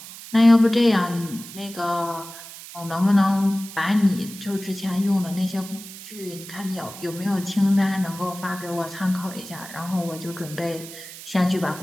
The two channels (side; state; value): right; noise; hiss, 14 dB below the sound